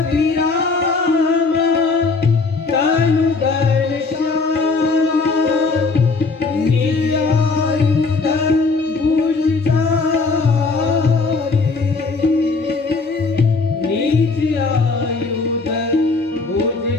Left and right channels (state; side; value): quieter; right; 4.0 dB